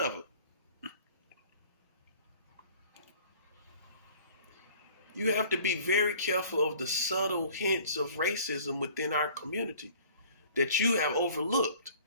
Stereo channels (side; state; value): both; inverted; correlation -0.51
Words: him. You have to be very careful of the subtle hints of racism within our community that you have overlooked.